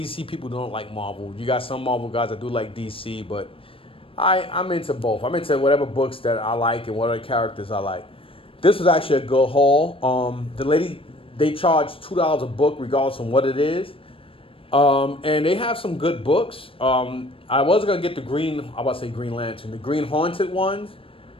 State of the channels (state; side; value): late; right; 0.26 ms